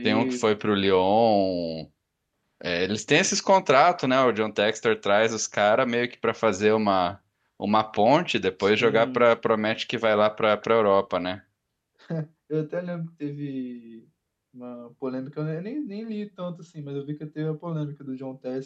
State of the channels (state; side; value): identical; both; correlation 1.00